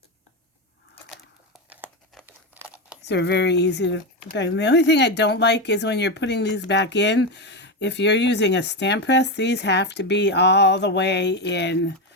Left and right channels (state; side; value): normal; both; correlation 0.12